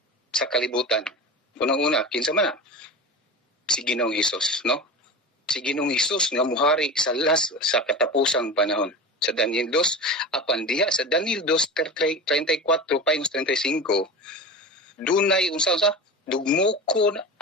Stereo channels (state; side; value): normal; both; correlation 0.29